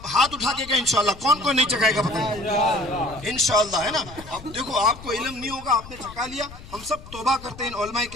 ہاتھ اٹھا کے کہیں انشاءاللہ، کون کون نہیں چکائے گا پتہ انشاءاللہ، ہے نا۔ اب دیکھو آپ کو علم نہیں ہوگا، آپ نے چکا لیا، ہم سب توبہ کرتے ہیں ان علماء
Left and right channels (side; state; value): left; noise; rumble, 16 dB below the sound